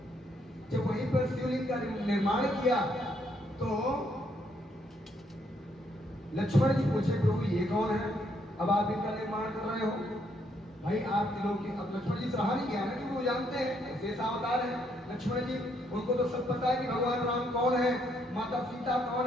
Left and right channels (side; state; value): both; normal; correlation 0.72